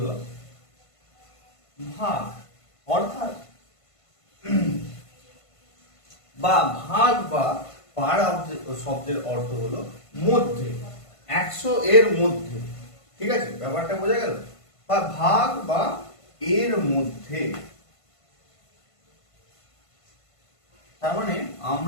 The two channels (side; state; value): right; late; 1.5 ms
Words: ভাগ। অর্থাৎ বা ভাগ বা পার শব্দের অর্থ হলো মধ্যে, 100 এর মধ্যে। ঠিক আছে, ব্যাপারটা বোঝা গেল? বা ভাগ বা এর মধ্যে। তার মানে